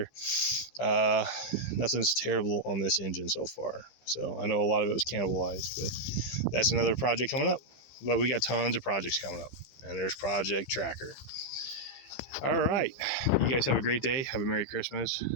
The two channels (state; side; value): late; right; 15 ms